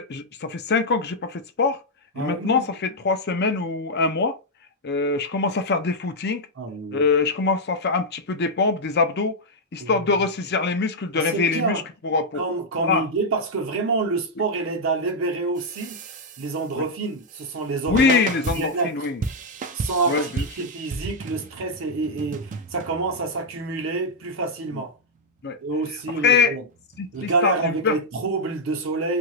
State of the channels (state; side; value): normal; both; correlation -0.02